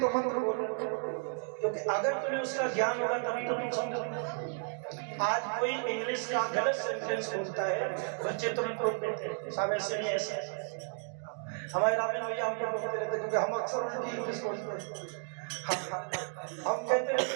मंत्र बोलो, क्योंकि अगर तुम्हें उसका ज्ञान होगा तभी तो तुम समझो। आज कोई इंग्लिश का गलत सेंटेंस बोलता है, बच्चे तुरंत रोक देते हैं, साहब ऐसे नहीं ऐसे। हमारे रामेन भैया हमको बोलते रहते, क्योंकि हम अक्सर उल्टी इंग्लिश बोलते हैं। हम कहते रहते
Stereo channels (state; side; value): silent; left; 56 dB below the other